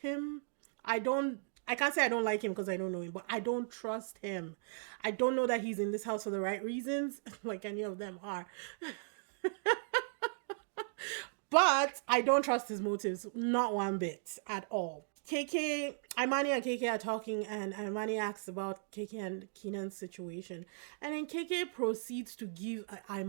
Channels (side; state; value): left; silent; digital silence